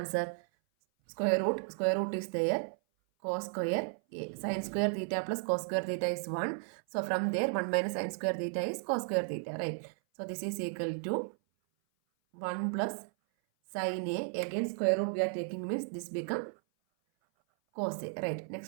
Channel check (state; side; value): silent; left; 55 dB below the other